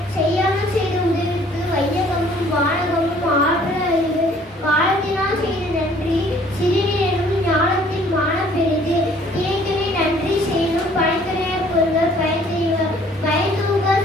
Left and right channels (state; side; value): normal; both; correlation 0.57